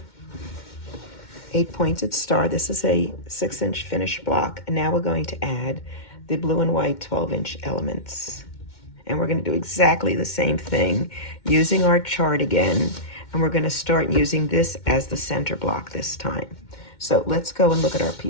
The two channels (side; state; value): right; late; 2.1 ms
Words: 8-pointed star. This is a 6-inch finished block. And now we're going to add the blue and white 12-inch elements. And we're going to do exactly the same thing using our chart again. And we're going to start using this as the center block this time. So let's go and look at our